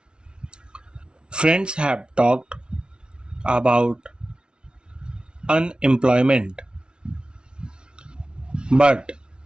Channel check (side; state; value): left; late; 0.056 ms